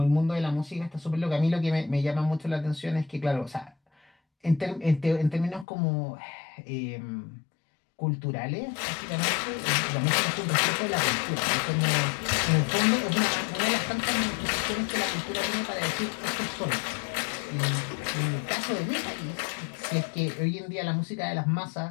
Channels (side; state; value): right; drops out; at 5.7 s